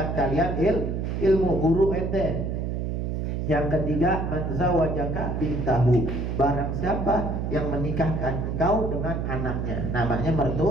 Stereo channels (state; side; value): noise; right; hum, 2 dB below the sound